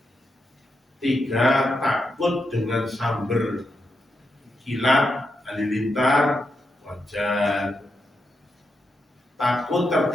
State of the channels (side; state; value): both; normal; correlation 0.85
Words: 3, takut dengan samber kilat halilintar, wajar. Takut